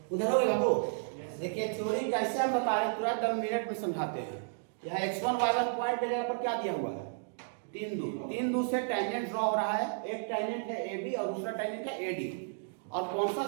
उधर हो गया बाबू। देखिए थ्योरी कैसे हम बता रहे हैं, तुरंत 10 मिनट में समझाते हैं। यहाँ x1 y1 पॉइंट पे जगह पर क्या दिया हुआ है, 3 दूर से टेंजेंट ड्रॉ हो रहा है। एक टेंजेंट है AB और दूसरा टेंजेंट है AD, और कौन सा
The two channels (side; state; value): left; silent; digital silence